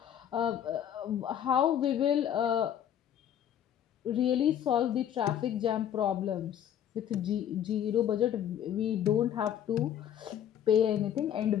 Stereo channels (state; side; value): quieter; right; 9.9 dB